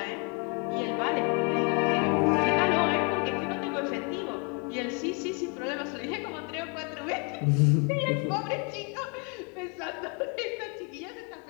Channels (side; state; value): right; quieter; 33.9 dB